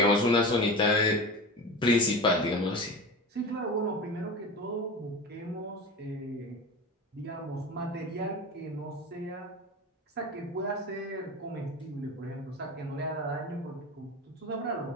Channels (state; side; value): normal; both; correlation 0.29